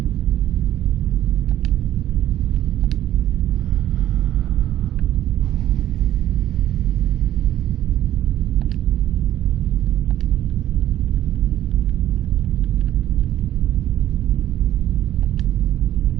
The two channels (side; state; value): left; quieter; 12.6 dB